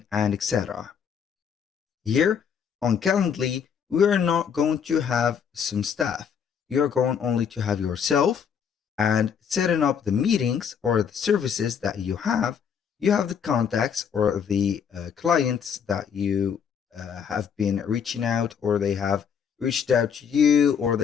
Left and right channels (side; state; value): right; quieter; 7.3 dB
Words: and etc. Here on Calendly, we are not going to have some staff. You're going only to have yourself and setting up the meetings or the services that you have. You have the contacts or the clients that you have been reaching out, or they have reached out to you, or